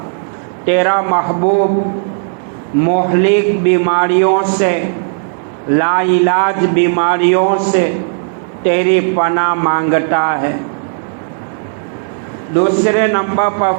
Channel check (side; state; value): left; silent; 71 dB below the other